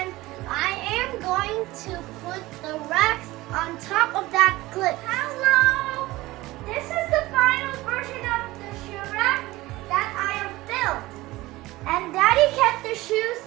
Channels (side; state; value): left; quieter; 18.9 dB